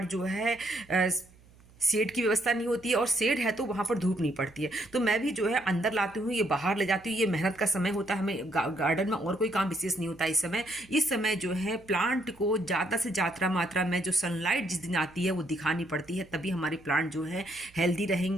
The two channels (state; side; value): noise; right; hum, 26 dB below the sound